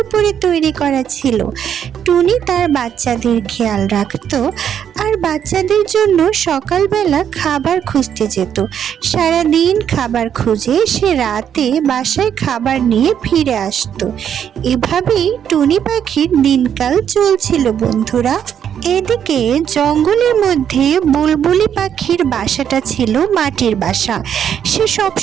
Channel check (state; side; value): quieter; left; 8.9 dB